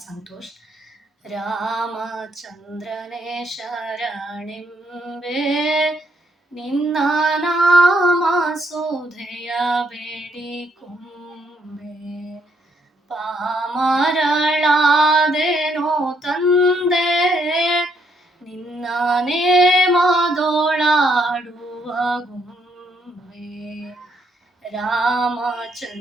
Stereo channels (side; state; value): both; normal; correlation 0.73